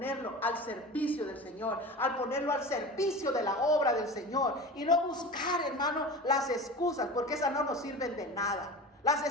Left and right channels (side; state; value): both; normal; correlation 0.33